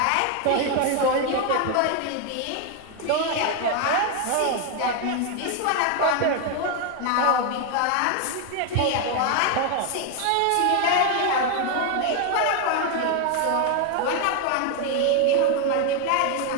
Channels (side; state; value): both; different; correlation 0.01